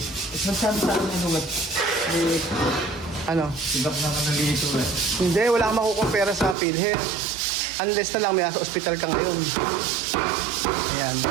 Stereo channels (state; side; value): drops out; left; at 6.6 s